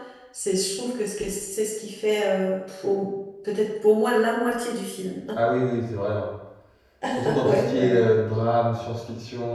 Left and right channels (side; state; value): both; identical; correlation 1.00